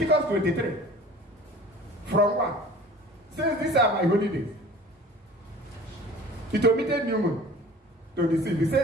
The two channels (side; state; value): both; normal; correlation 0.44